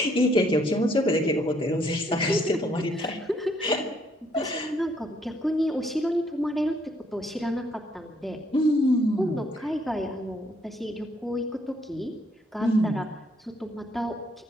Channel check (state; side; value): normal; both; correlation 0.68